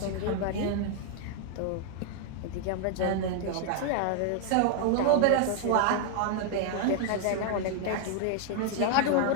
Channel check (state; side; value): different; both; correlation 0.00